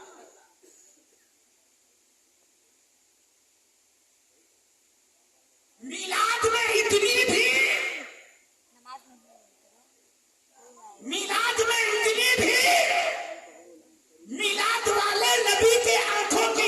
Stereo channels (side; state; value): both; identical; correlation 1.00